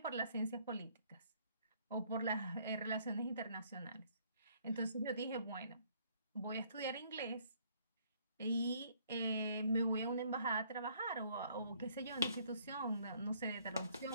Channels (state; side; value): inverted; both; correlation -0.64